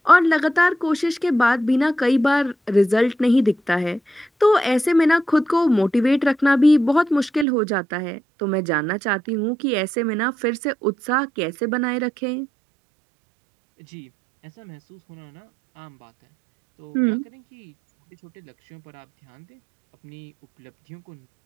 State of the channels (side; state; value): left; drops out; at 7.5 s